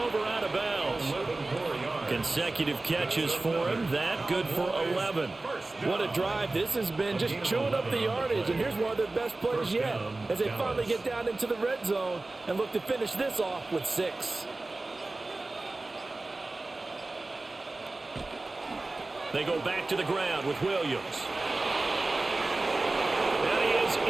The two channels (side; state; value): left; quieter; 3.1 dB